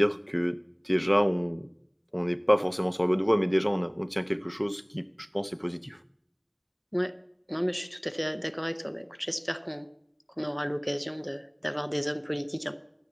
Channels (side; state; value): both; identical; correlation 1.00